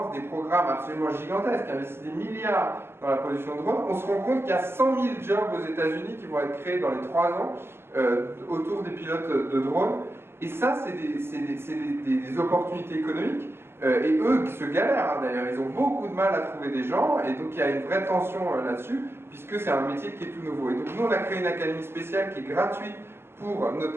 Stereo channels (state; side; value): late; left; 0.11 ms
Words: des programmes absolument gigantesques, qui investissent des milliards dans la production de drones, on se rend compte qu'il y a 100 000 jobs aux États-Unis qui vont être créés dans les 3 ans autour des pilotes de drones. Et ça, c'est des opportunités économiques. Et eux qui se galèrent, d'ailleurs, ils ont beaucoup de mal à trouver des gens. Et donc il y a une vraie tension là-dessus, puisque c'est un métier qui est tout nouveau. Et donc nous, on a créé une académie spéciale qui est gratuite pour